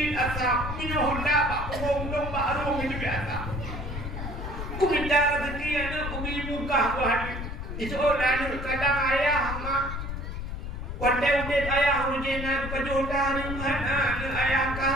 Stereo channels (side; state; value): left; noise; rumble, 6 dB below the sound